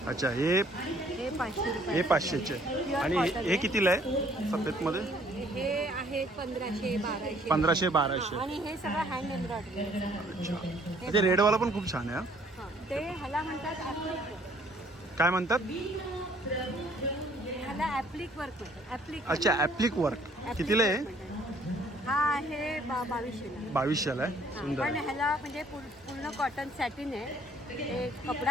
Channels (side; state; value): both; normal; correlation 0.61